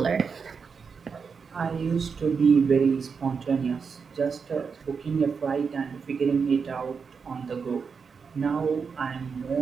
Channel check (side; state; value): left; quieter; 5.7 dB